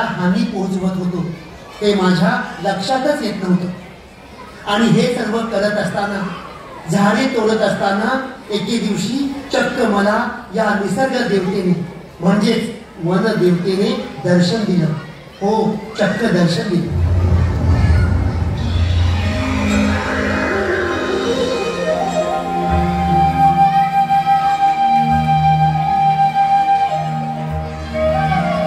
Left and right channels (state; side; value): identical; both; correlation 1.00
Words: हानी पोहोचवत होतो ते माझ्या लक्षातच येत नव्हतं. आणि हे सर्व करत असताना, झाडे तोडत असताना एके दिवशी चक्क मला या निसर्ग देवतेने म्हणजेच वन देवतेने दर्शन दिलं. हो, चक्क दर्शन दिलं.